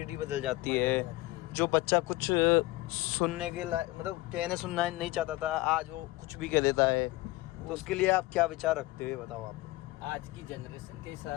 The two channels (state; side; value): quieter; right; 19.6 dB